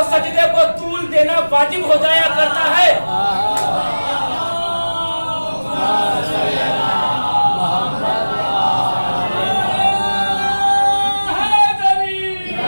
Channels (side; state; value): both; inverted; correlation -1.00